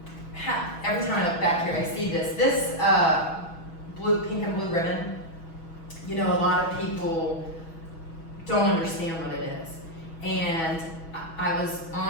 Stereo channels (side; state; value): right; late; 6.2 ms